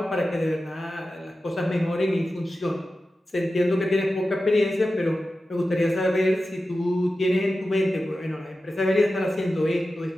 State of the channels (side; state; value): both; normal; correlation 0.93